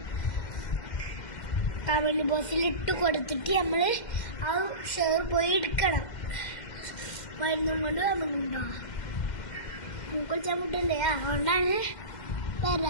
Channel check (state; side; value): late; right; 2.1 ms